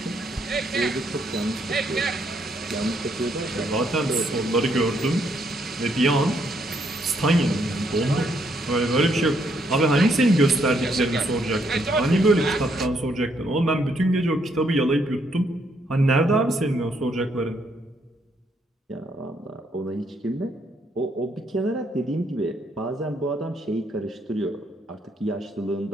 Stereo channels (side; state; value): both; normal; correlation 0.73